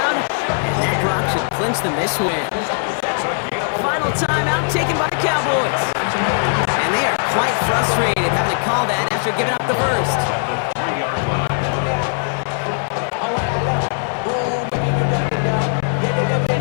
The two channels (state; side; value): silent; right; 66 dB below the other